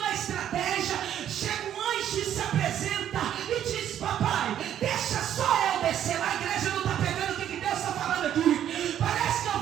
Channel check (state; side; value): quieter; left; 10.5 dB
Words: estratégia, chega um anjo e se apresenta e diz: papai, deixa só eu descer lá. A igreja não está pegando o que Deus está falando aqui. Parece que eu